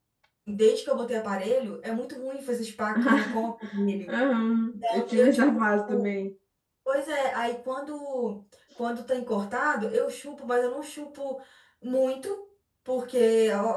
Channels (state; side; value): identical; both; correlation 1.00